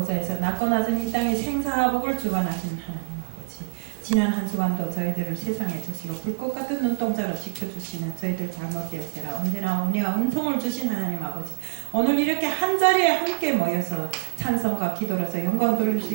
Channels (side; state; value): left; silent; digital silence